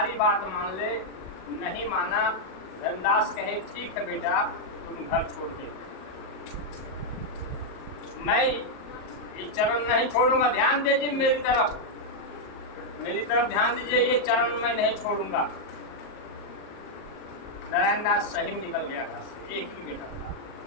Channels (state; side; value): late; right; 37 ms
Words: बात मान ले। नहीं माना। धर्मदास कहे ठीक है बेटा तुम घर छोड़ दे, मैं ये चरण नहीं छोड़ूंगा। ध्यान दीजिए मेरी तरफ ध्यान दीजिए, ये चरण मैं नहीं छोड़ूंगा। नारायण दास सही में निकल गया घर से, एक ही बेटा था।